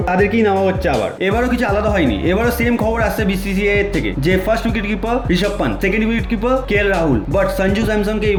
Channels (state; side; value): identical; both; correlation 1.00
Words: তাদেরকেই নেওয়া হচ্ছে আবার। এবারও কিছু আলাদা হয়নি, এবারও সেম খবর আসছে বিসিসিআই এর থেকে যে first wicket keeper Rishabh Pant, second wicket keeper KL Rahul, but Sanju স্যামসংকে